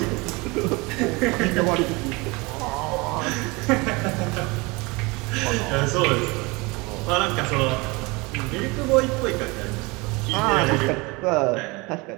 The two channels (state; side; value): quieter; left; 25.6 dB